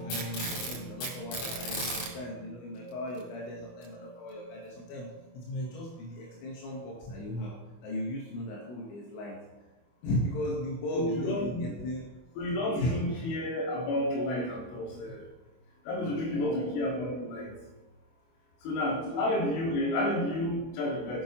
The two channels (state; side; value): late; right; 24 ms